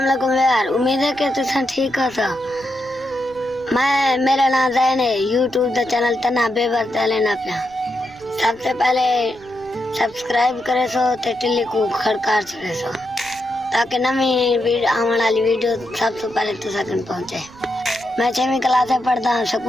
वालेकुम यार, उम्मीद है कि तुम ठीक हो। मेरा नाम ज़ैन है। यूट्यूब का चैनल तना बेबर लेना पिया। सबसे पहले सब्सक्राइब करे सो ते टिल्ली को खड़कार छड़े सो ताकि नवी आने वाली वीडियो सबसे पहले तुम पहुंचे। मैं 6वीं क्लास में पढ़ता हूँ।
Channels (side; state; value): right; noise; rumble, 24 dB below the sound